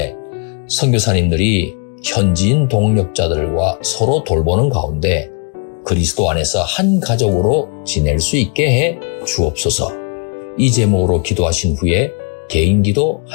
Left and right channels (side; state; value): right; quieter; 39.8 dB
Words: 선교사님들이 현지인 동력자들과 서로 돌보는 가운데 그리스도 안에서 한 가족으로 지낼 수 있게 해 주옵소서. 이 제목으로 기도하신 후에 개인 기도